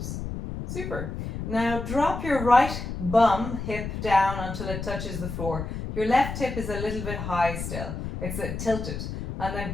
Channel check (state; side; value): noise; left; rumble, 6 dB below the sound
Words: Super. Now drop your right bum hip down until it touches the floor. Your left hip is a little bit high still. It's tilted. And